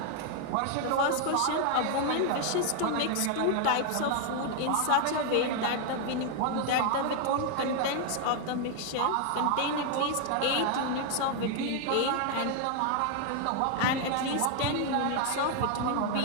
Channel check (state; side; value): different; both; correlation 0.00